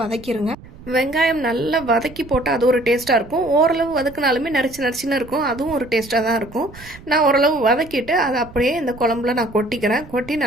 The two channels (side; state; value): right; noise; rumble, 19 dB below the sound